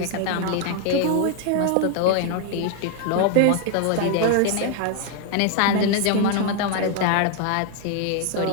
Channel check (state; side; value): different; both; correlation 0.00